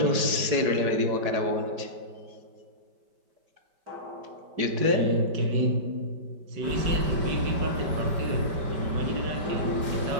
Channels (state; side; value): late; left; 5.1 ms